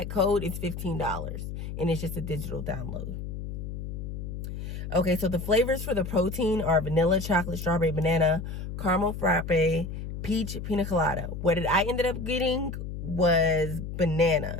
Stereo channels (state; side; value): noise; left; hum, 7 dB below the sound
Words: code, it's $15. And it's just a digital download. Okay, so the flavors for the protein are vanilla, chocolate, strawberry, banana, caramel frappe, peach, pina colada. What I ended up getting was